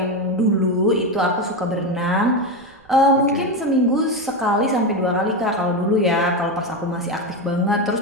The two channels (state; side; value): noise; right; rumble, 29 dB below the sound